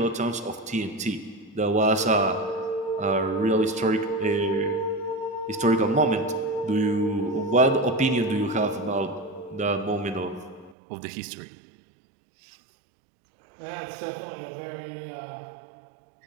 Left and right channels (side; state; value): left; drops out; at 10.8 s